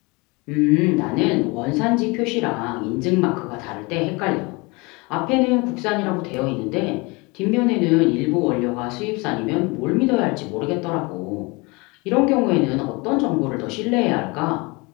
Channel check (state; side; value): quieter; right; 26.7 dB